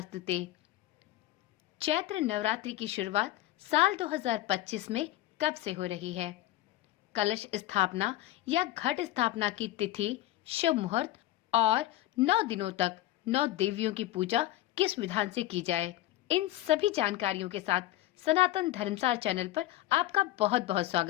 चैत्र नवरात्रि की शुरुआत साल 2025 में कब से हो रही है? कलश स्थापना या घट स्थापना की तिथि, शुभ मुहूर्त और 9 दिनों तक 9 देवियों की पूजा किस विधान से की जाए, इन सभी जानकारियों के साथ सनातन धर्मसार चैनल पर आपका बहुत बहुत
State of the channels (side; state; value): right; quieter; 15.1 dB